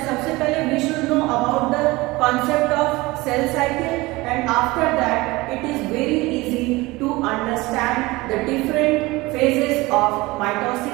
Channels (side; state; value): left; quieter; 21.4 dB